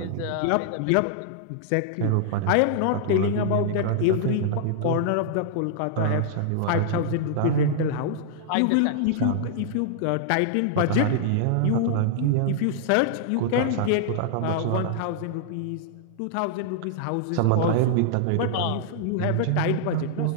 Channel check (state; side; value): different; both; correlation -0.01